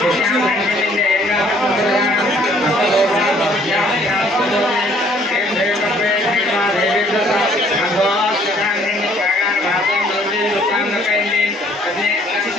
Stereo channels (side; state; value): both; normal; correlation 0.61